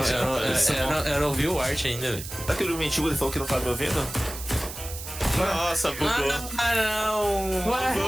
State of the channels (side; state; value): right; noise; hiss, 10 dB below the sound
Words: Eu não vi o art ainda, velho. Aquele mentiu, ele falou que não tá me ouvindo? Nossa, bugou. Ah, não! Ué?